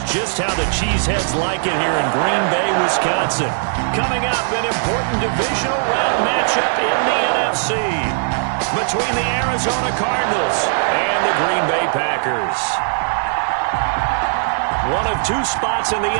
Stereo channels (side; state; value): left; silent; digital silence